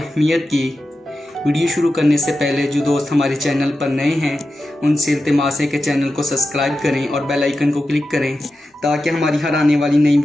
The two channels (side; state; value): both; normal; correlation 0.92